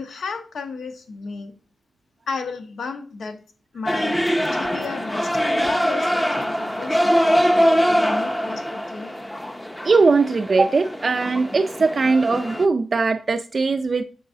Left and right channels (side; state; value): both; normal; correlation 0.95